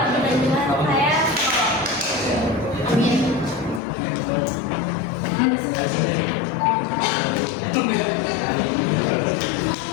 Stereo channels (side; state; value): right; drops out; at 3.8 s